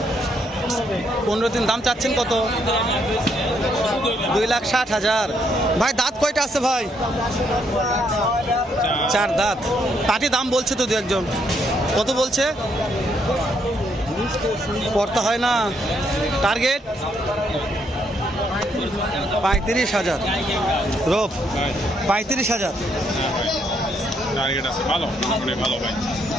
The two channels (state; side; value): normal; both; correlation 0.73